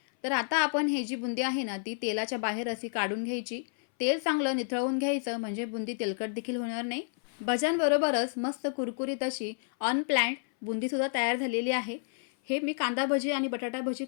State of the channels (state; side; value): silent; right; 56 dB below the other